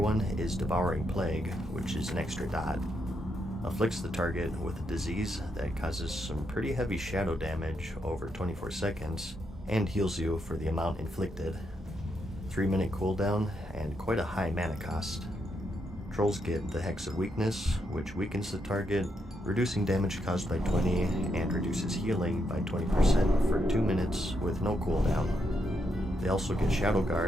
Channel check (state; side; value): normal; both; correlation 0.80